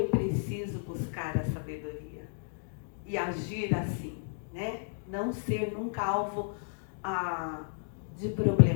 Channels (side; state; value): right; silent; digital silence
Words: preciso buscar a sabedoria e agir assim, né? Não ser nunca alvo de